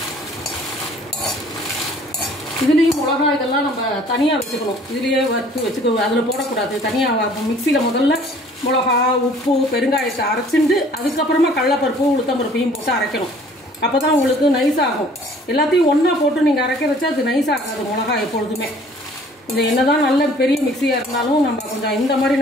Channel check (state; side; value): normal; both; correlation 0.54